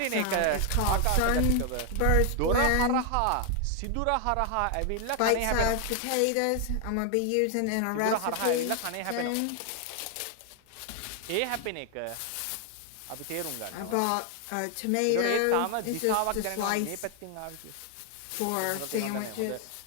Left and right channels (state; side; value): different; both; correlation 0.00